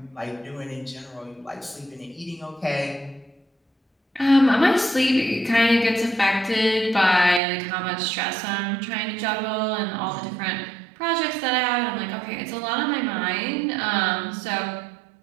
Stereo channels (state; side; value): drops out; left; at 7.4 s